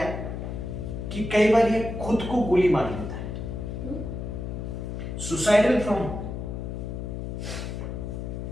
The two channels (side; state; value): left; noise; hum, 5 dB below the sound